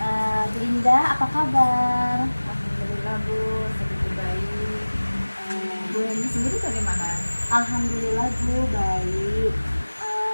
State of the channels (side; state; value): both; inverted; correlation -1.00